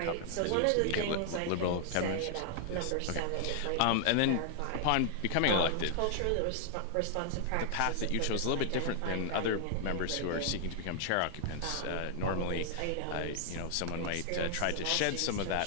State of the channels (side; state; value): both; different; correlation 0.00